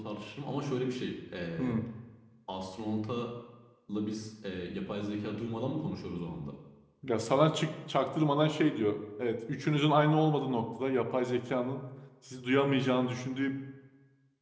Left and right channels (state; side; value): identical; both; correlation 1.00